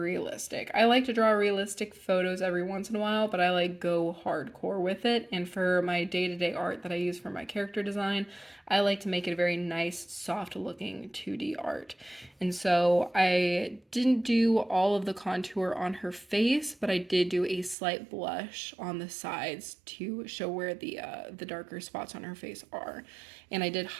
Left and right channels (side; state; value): left; drops out; at 17.8 s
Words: realistic. I like to draw realistic photos every once in a while, but I like go hardcore with it. And for my day-to-day art that I use for my character design, I like to make it a very nice, soft looking 2D art. And so I didn't do all of the contour on her face, but I did do a slight blush on the sides to show where the darker spots on her face are. And I did